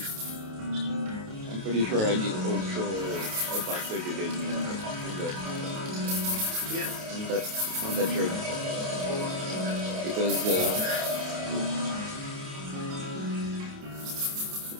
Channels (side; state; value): left; late; 28 ms